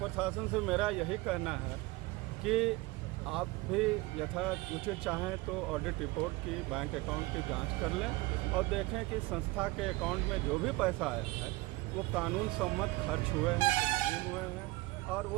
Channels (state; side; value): quieter; left; 21.5 dB